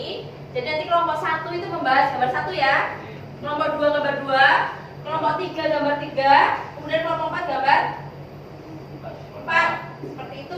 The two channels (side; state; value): both; identical; correlation 1.00